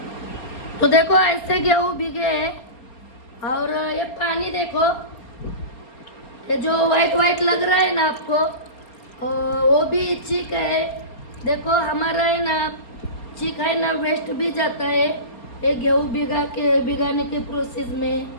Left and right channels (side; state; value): right; late; 4.3 ms